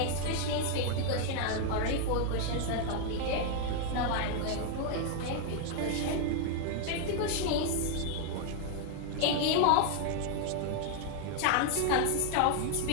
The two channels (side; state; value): both; different; correlation 0.00